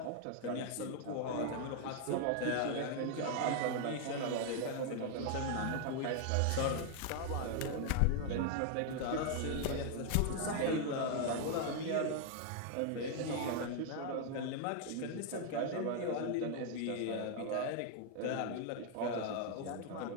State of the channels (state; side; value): different; both; correlation 0.00